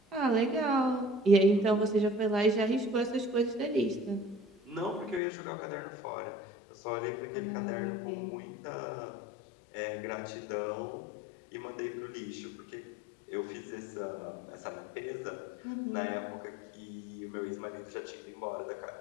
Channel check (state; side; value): drops out; right; at 5.2 s